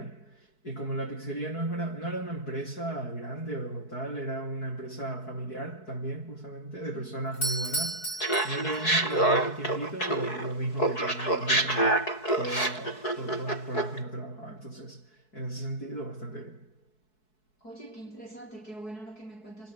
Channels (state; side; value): late; right; 4.6 ms